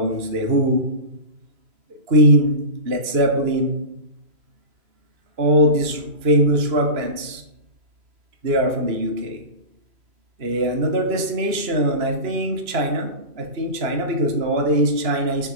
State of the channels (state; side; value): late; left; 2.9 ms